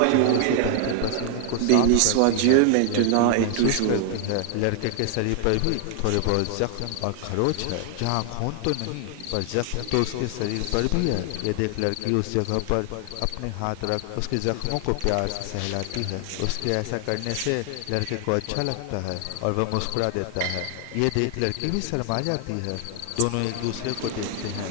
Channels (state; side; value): different; both; correlation 0.00